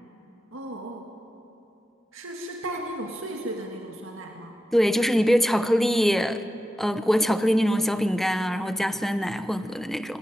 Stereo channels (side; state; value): both; normal; correlation 0.91